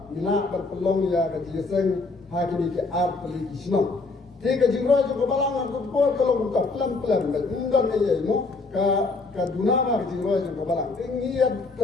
Ina berpelong ya kejiseng hari ke art peli kisno. Tiga jingro juga balang aku por kalau buka pelan enggak ya imo ka dunama jingro juga balang. Tinggi ya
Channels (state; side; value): quieter; right; 3.7 dB